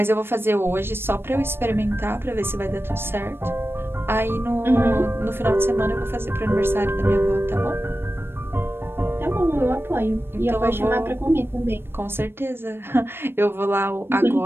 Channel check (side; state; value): left; late; 0.11 ms